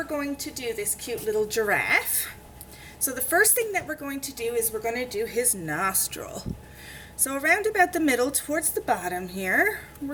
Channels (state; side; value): identical; both; correlation 1.00